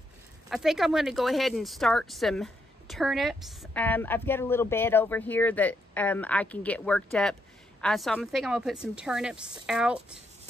think I'm going to go ahead and start some turnips. I've got a little bed over here that I can get worked up. So I think I'm going to put some turnips out.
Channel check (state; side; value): normal; both; correlation 0.78